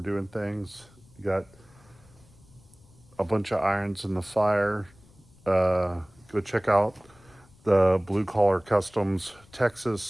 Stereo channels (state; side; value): noise; left; rumble, 27 dB below the sound